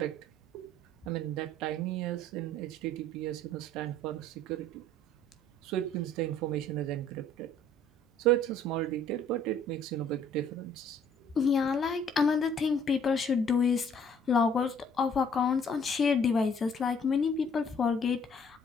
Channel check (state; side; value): normal; both; correlation 0.58